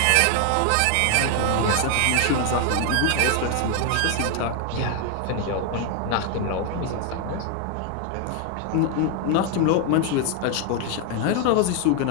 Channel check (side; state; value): both; different; correlation 0.00